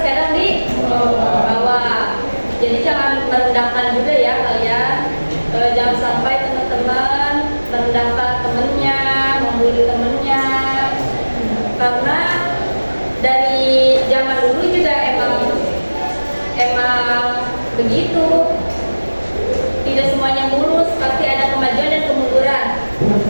di bawah. Jadi jangan merendahkan juga ya kalian. Jangan sampai teman-teman merendahkan temennya, membuli temennya. Karena dari zaman dulu juga emang begitu. Tidak semuanya mulus, pasti ada kemajuan dan kemunduran.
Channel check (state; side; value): inverted; both; correlation -1.00